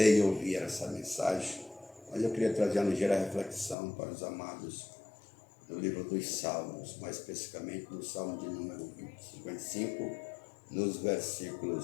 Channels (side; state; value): right; drops out; at 3.8 s